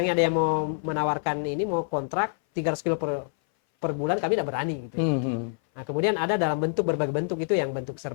ada yang mau menawarkan ini, mau kontrak 300 kilo per bulan, kami tidak berani gitu. Nah, kemudian ada dalam bentuk berbagai bentuk, itu yang bentuk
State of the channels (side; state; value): right; silent; 58 dB below the other